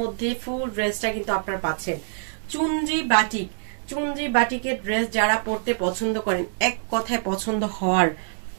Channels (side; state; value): left; silent; digital silence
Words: মধ্যে ফুল ড্রেসটা কিন্তু আপনারা পাচ্ছেন। চুনরি বাটিক, চুনরি বাটিকের ড্রেস যারা পরতে পছন্দ করেন, এক কথায় পছন্দ হওয়ার